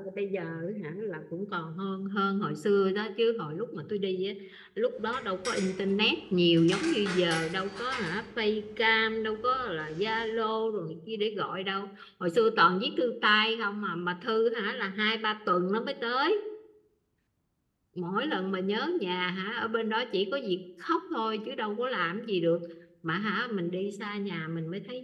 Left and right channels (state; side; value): identical; both; correlation 1.00